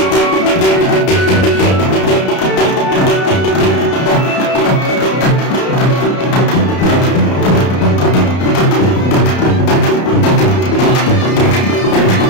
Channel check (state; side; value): late; right; 32 ms